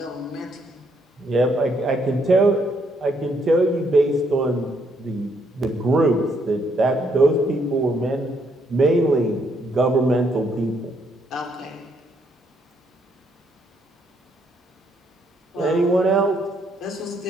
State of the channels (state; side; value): normal; both; correlation 0.72